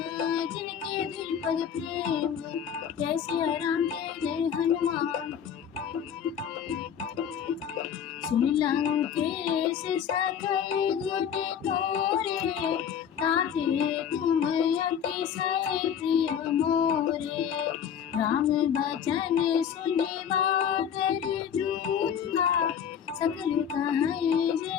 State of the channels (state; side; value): quieter; right; 8.4 dB